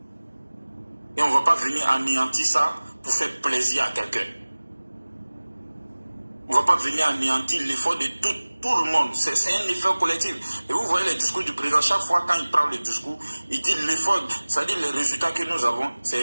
Et on ne va pas venir anéantir ça pour faire plaisir à quelqu'un. On ne va pas venir anéantir l'effort de tout le monde. C'est un effort collectif. Et vous voyez les discours du président, chaque fois quand il prend le discours, il dit l'effort, c'est-à-dire les résultats que nous avons, c'est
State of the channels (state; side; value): inverted; both; correlation -1.00